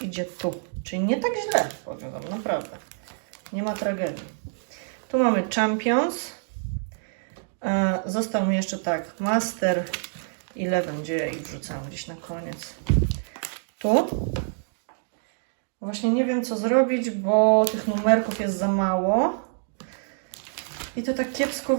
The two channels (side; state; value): left; silent; digital silence